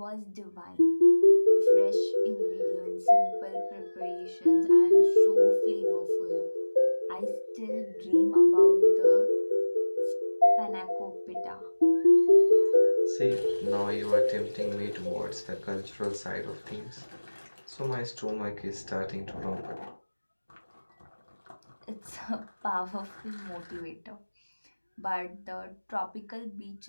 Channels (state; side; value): inverted; both; correlation -1.00